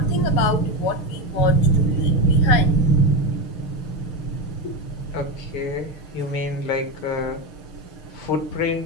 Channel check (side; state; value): right; late; 6.7 ms